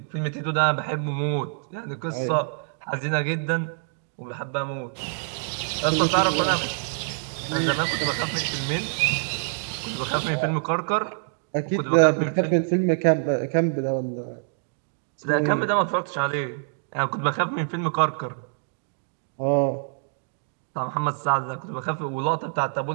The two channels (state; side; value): silent; left; digital silence